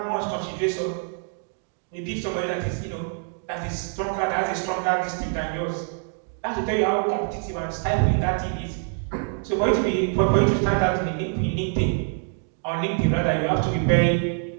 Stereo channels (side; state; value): left; silent; 56 dB below the other